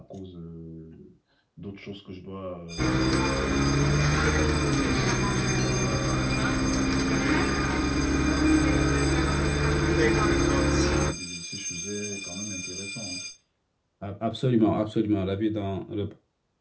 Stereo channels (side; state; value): both; identical; correlation 1.00